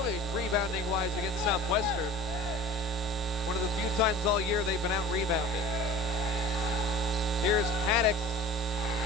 rebounding-wise against Southwestern. One of the few times all year they've been out-rebounded. Here's Haddock.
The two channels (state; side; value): normal; both; correlation 0.40